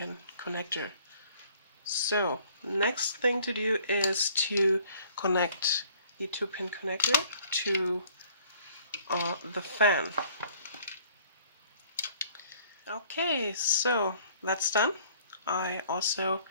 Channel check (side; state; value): both; inverted; correlation -0.57